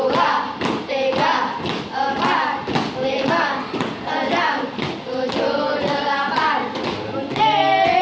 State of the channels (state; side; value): identical; both; correlation 1.00